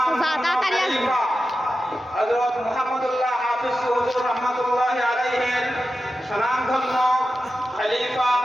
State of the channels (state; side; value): normal; both; correlation 0.92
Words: তাড়াতাড়ি আসবে। হযরত মুহাম্মদুল্লাহ হাফেজ হুজুর রাহমাতুল্লাহি আলাইহি সুনামধন্য খলিফা